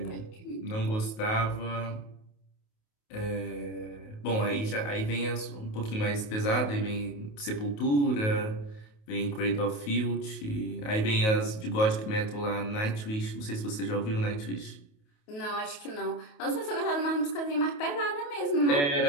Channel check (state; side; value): late; right; 28 ms